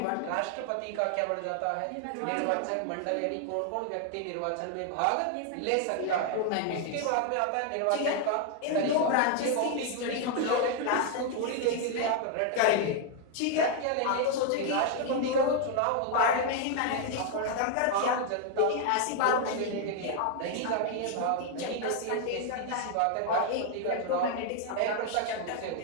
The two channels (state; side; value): different; both; correlation 0.00